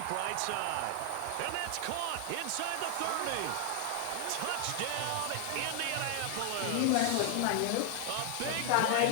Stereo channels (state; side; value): different; both; correlation 0.00